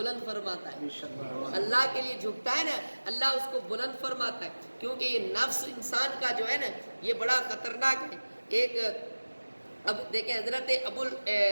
فرماتا ہے. اللہ کے لیے جھکتا ہے نا اللہ اس کو بلند فرماتا ہے. کیونکہ یہ نفس انسان کا جو ہے نا یہ بڑا خطرناک ہے. ایک اب دیکھیں حضرت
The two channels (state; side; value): inverted; both; correlation -1.00